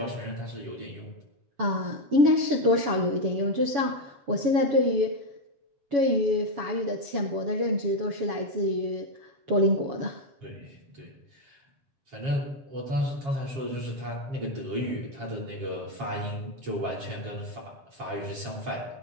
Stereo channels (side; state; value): left; late; 7.1 ms